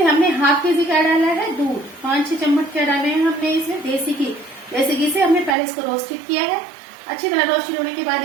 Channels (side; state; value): left; drops out; at 5.6 s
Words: हमने ½ kg क्या डाला है दूध, 5-6 चम्मच क्या डाले हैं हमने इसमें देसी घी। देसी घी से हमने पहले इसको रोस्टेड किया है, अच्छी तरह रोस्टेड होने के